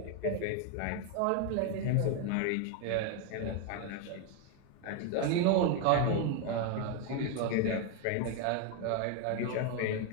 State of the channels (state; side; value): different; both; correlation 0.01